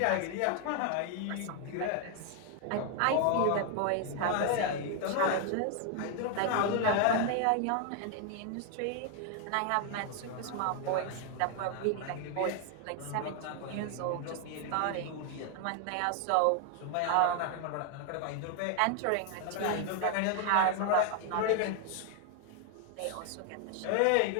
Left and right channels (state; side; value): different; both; correlation 0.00